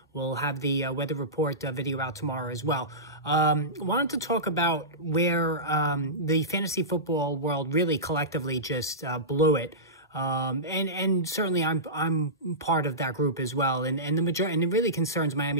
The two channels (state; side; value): normal; both; correlation -0.19